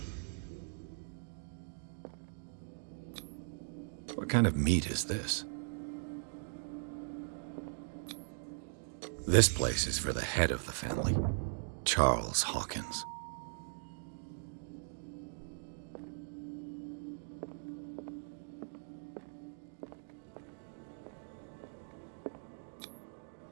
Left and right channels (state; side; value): silent; left; digital silence